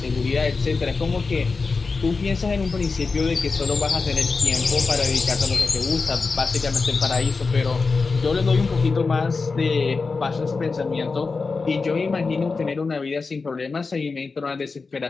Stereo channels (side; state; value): right; quieter; 4.3 dB